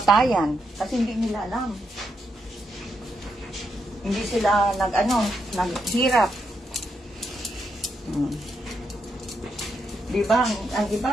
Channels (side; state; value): both; normal; correlation 0.80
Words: Kasi hindi nila alam. Hindi sila naghirap. Di ba? Ang iba,